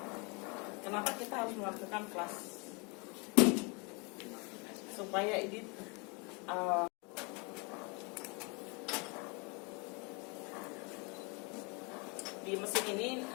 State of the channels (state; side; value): quieter; right; 31.1 dB